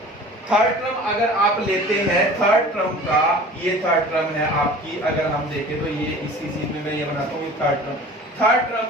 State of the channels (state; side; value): normal; both; correlation 0.43